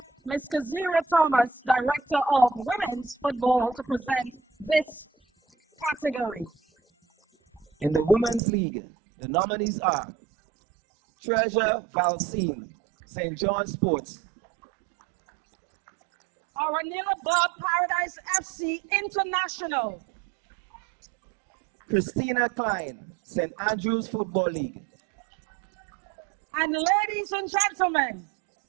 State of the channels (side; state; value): left; drops out; at 8.4 s